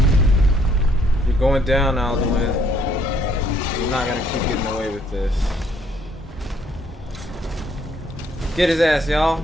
You're going down, Alduin. You're not gonna keep getting away with this. Get his ass, y'all.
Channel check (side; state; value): both; normal; correlation 0.67